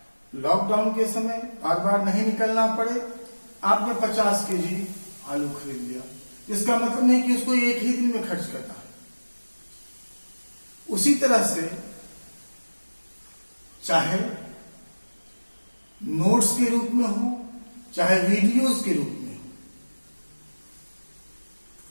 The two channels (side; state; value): both; inverted; correlation -1.00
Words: लॉकडाउन के समय बार बार नहीं निकलना पड़े, आपने 50 केजी आलू खरीद लिया। इसका मतलब नहीं कि उसको एक ही दिन में खर्च करना है। उसी तरह से चाहे नोट्स के रूप में हो, चाहे वीडियोस के रूप में हो,